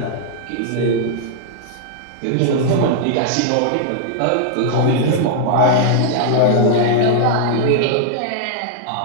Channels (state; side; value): different; both; correlation -0.01